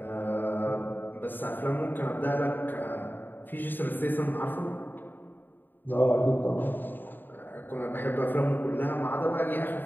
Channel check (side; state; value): right; late; 0.092 ms